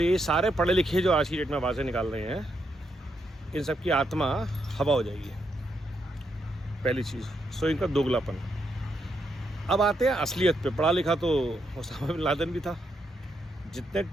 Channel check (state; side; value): normal; both; correlation 0.80